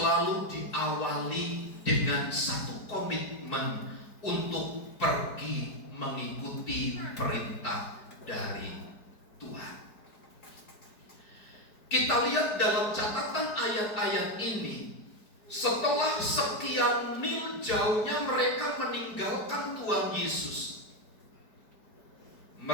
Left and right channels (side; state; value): right; late; 4.8 ms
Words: diawali dengan satu komitmen untuk pergi mengikuti perintah dari Tuhan. Kita lihat dalam catatan ayat-ayat ini, setelah sekian mil jauhnya mereka meninggalkan Tuhan Yesus,